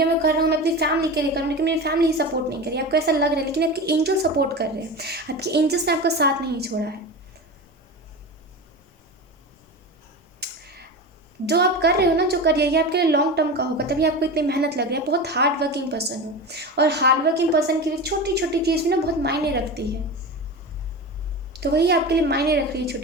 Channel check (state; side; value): normal; both; correlation 0.27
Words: मैं कर रहा हूँ, मैं अपनी फैमिली के लिए कर रहा हूँ, लेकिन मेरी फैमिली ही सपोर्ट नहीं कर रही, आपको ऐसा लग रहा है। लेकिन आपके एंजल सपोर्ट कर रहे हैं, आपके एंजल्स ने आपका साथ नहीं छोड़ा है। जो आप कर रहे हो ना, जो करिए, ये आपके लिए लॉन्ग टर्म का होगा, तभी आपको इतनी मेहनत लग रही है। बहुत हार्ड वर्किंग पर्सन हो, और हार्ड वर्किंग पर्सन के लिए छोटी छोटी चीज़ भी ना बहुत मायने रखती है। तो वही आपके लिए मायने रख रही है,